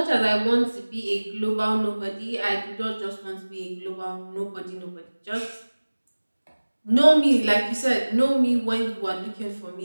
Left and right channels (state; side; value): inverted; both; correlation -1.00